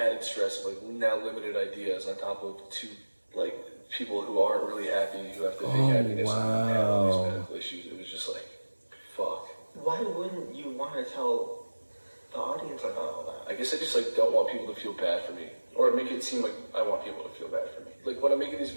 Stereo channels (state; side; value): inverted; both; correlation -1.00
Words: stress of like now limited ideas on top of 2 like people who aren't really happy, who have to fake happiness and have all these medical issues. It was just like, fuck. Why wouldn't you want to tell the audience about all that? I guess I just like don't want people to feel bad for me, or make it seem like I want people to feel bad for me. Like when I'm making these